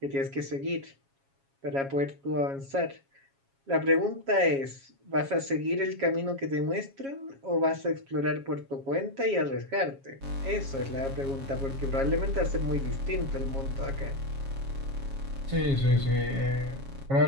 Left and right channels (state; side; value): late; left; 7.3 ms